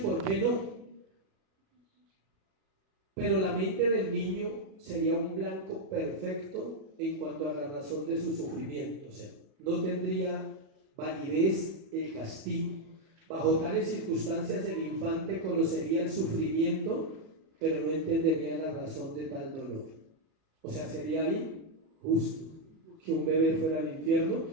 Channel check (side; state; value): left; late; 37 ms